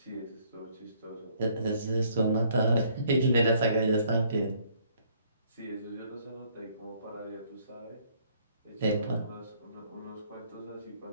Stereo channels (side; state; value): both; inverted; correlation -0.64